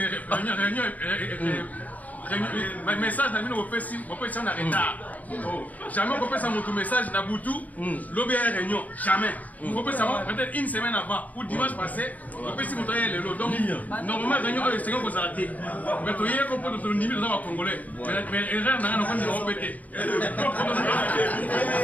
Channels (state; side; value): late; right; 0.076 ms